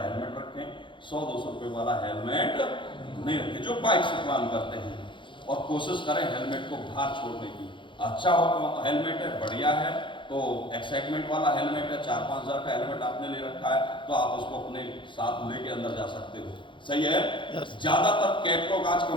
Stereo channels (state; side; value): late; right; 0.24 ms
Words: हेलमेट रखें, 100-200 रुपये वाला हेलमेट नहीं रखें जो बाइक से प्लान करते हैं, और कोशिश करें हेलमेट को बाहर छोड़ने की। अच्छा हो हेलमेट है, बढ़िया है, तो एक्साइटमेंट वाला हेलमेट है, 4-5 हज़ार का हेलमेट आपने ले रखा है, तो आप उसको अपने साथ लेके अंदर जा सकते हो, सही है। ज्यादातर कैटलॉग, आज